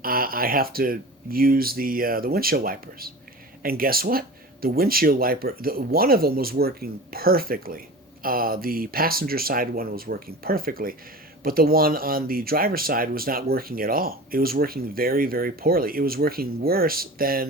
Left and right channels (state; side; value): normal; both; correlation 0.35